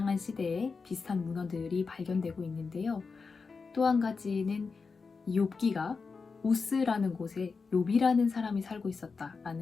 시대에 비슷한 문헌들이 발견되고 있는데요. 또 한 가지는 이 욥기가 우스라는 곳에 욥이라는 사람이 살고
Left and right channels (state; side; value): quieter; right; 4.8 dB